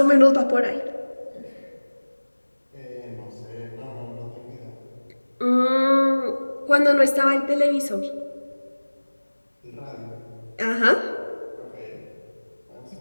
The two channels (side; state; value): both; inverted; correlation -1.00